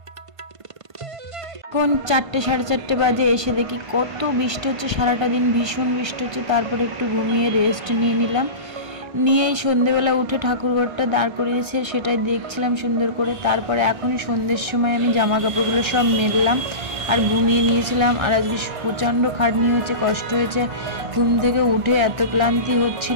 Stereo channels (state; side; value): late; left; 1.5 ms